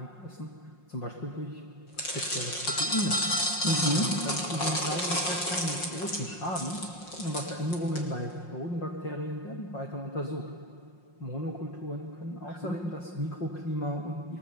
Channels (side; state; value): right; late; 5.6 ms